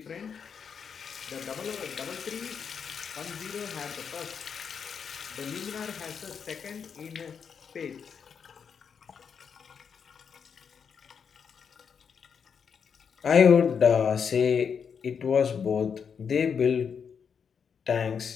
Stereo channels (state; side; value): quieter; right; 6.7 dB